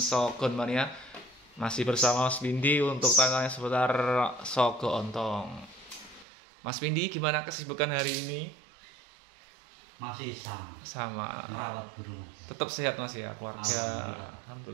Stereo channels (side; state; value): left; drops out; at 6.2 s